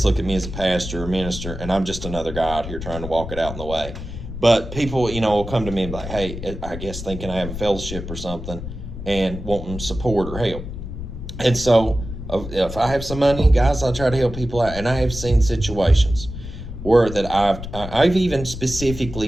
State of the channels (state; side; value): noise; left; rumble, 9 dB below the sound